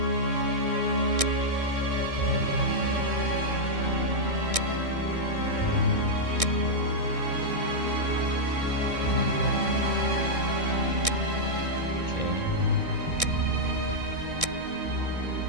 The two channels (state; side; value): late; left; 1.6 ms